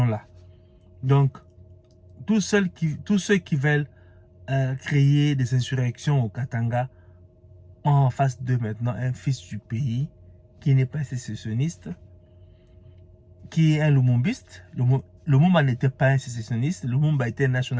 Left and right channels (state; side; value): identical; both; correlation 1.00